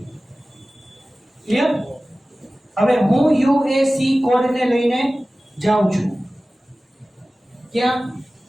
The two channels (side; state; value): both; normal; correlation 0.97